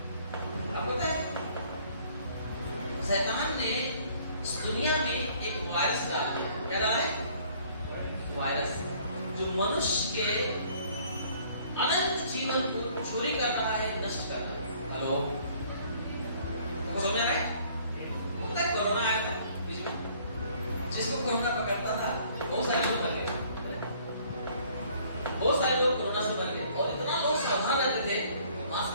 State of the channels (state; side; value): inverted; both; correlation -0.58